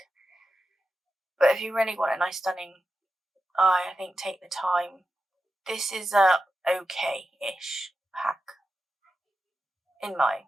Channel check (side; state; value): both; normal; correlation 0.90